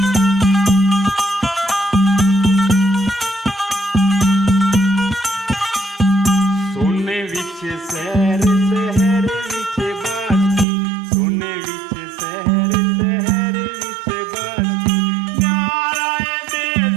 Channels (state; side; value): drops out; left; at 10.7 s